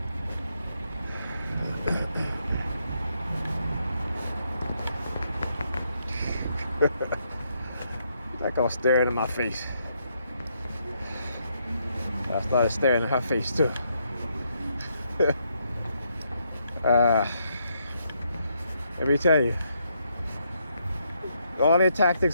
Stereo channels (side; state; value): both; inverted; correlation -0.76